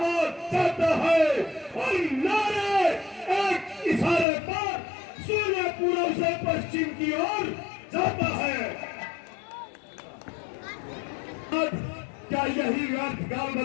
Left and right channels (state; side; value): drops out; right; at 4.2 s